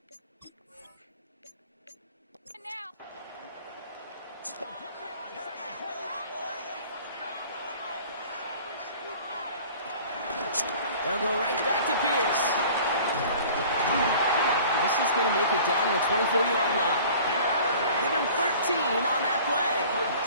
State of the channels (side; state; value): both; inverted; correlation -0.46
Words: They'll go right back to Pierce. This is going to make it down to the 24-yard line. Give him 13 on that play.